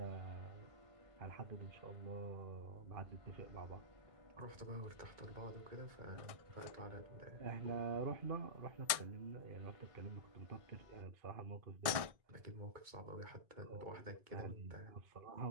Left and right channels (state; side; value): late; left; 1.6 ms